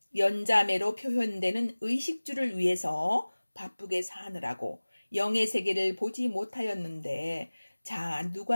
연자매로 표현되는 의식주를 위해서 바쁘게 사느라고 영의 세계를 보지 못하였는데, 자,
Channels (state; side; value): inverted; both; correlation -1.00